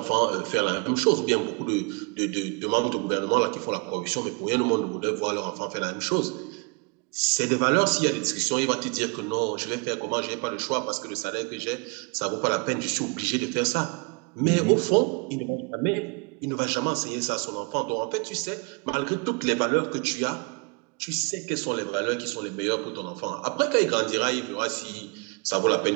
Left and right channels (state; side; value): quieter; left; 32.5 dB